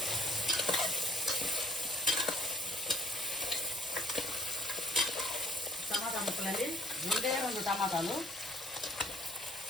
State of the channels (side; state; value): both; normal; correlation 0.58